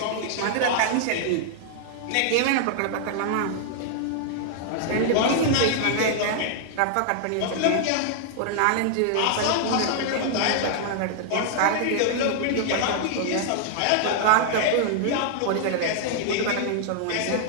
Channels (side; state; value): both; different; correlation -0.01